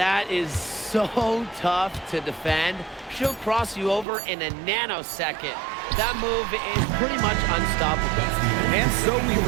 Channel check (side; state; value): left; drops out; at 4.0 s